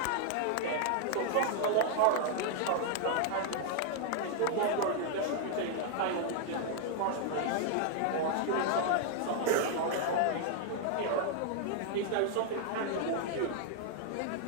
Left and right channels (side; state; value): both; different; correlation -0.01